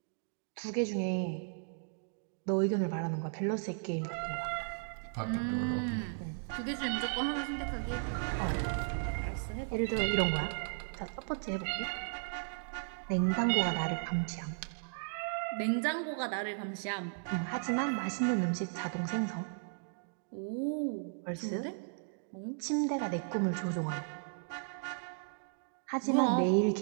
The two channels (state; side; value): silent; left; digital silence